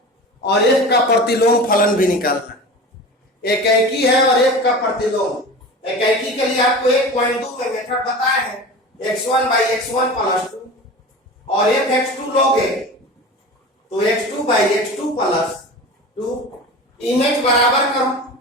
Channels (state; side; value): normal; both; correlation 0.33